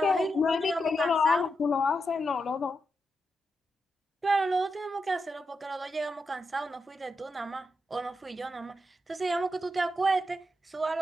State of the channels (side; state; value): both; normal; correlation 0.85